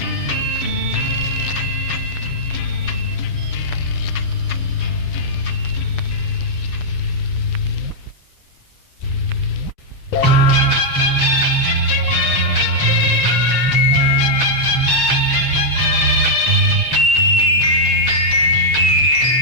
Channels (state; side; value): late; right; 7.7 ms